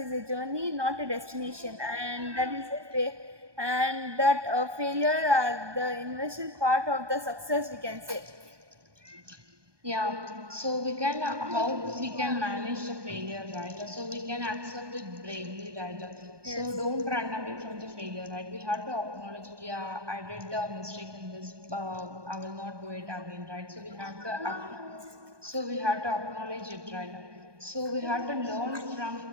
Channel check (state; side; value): late; left; 1.2 ms